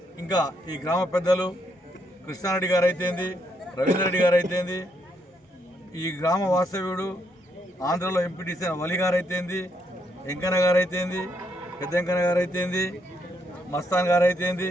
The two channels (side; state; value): both; normal; correlation 0.76